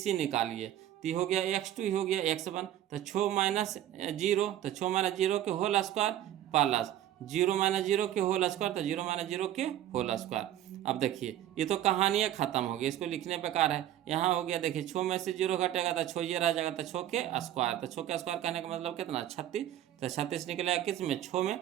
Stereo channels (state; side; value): quieter; left; 12.2 dB